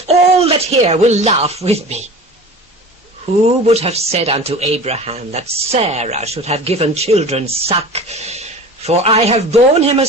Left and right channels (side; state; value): both; normal; correlation 0.37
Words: all that hear will laugh with me. Who would have said unto Abraham that Sarah should have given children suck? For I have borne him a